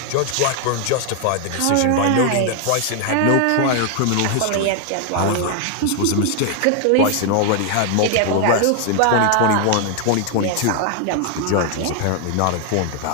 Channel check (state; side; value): different; both; correlation 0.00